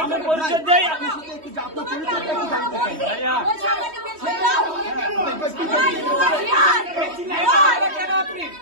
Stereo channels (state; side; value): late; left; 3.1 ms